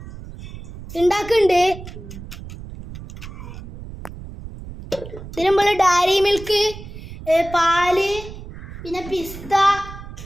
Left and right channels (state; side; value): noise; right; rumble, 13 dB below the sound